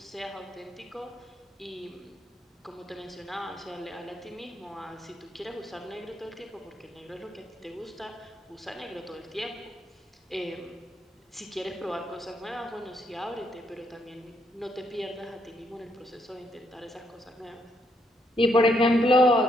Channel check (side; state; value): both; normal; correlation 0.75